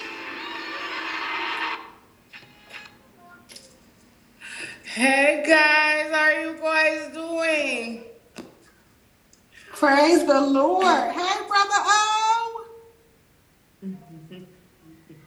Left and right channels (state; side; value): identical; both; correlation 1.00